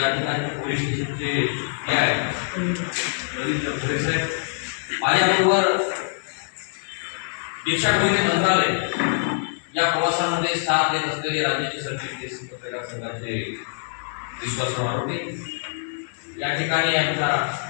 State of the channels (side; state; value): right; silent; digital silence